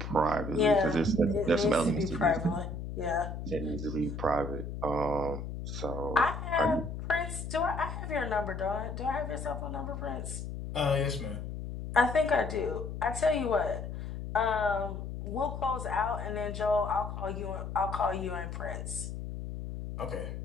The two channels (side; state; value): left; noise; hum, 7 dB below the sound